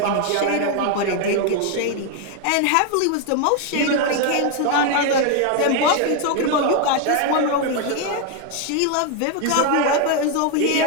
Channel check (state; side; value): different; both; correlation 0.01